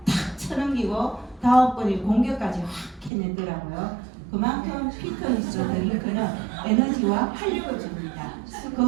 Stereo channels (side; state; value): left; drops out; at 3.1 s